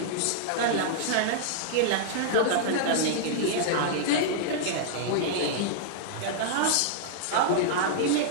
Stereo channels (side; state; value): both; different; correlation -0.01